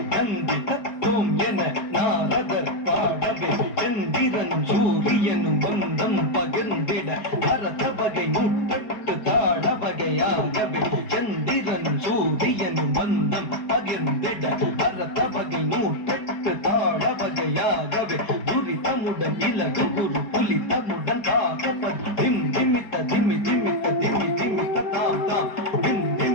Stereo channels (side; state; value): right; late; 4.7 ms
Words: நந்தி தத்துவம் என நாரதர் பாடவே சந்திரனும் சூரியனும் பந்தம் பகிர்ந்திட பரத வகை நூற்றெட்டு தாட வகையாகவே சந்திரனும் சூரியனும் பந்தம் பகிர்ந்திட பரத வகை நூற்றெட்டு தாழ வகையாகவே துரிதமுடன் இலகு குரு புலிதமுடன் தாகப்பன் திம் திமித்த திமி திமித்த திமி திமித்த தாம் தாம் திம்